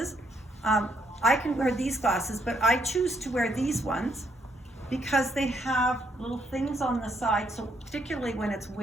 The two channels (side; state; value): both; normal; correlation 0.73